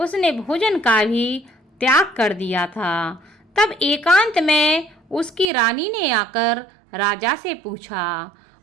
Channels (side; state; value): left; drops out; at 5.5 s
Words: भोजन का भी त्याग कर दिया था। तब एकांत में उसकी रानी ने आकर राजा से पूछा।